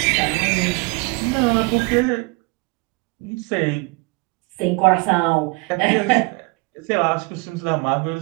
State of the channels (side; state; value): left; quieter; 26.9 dB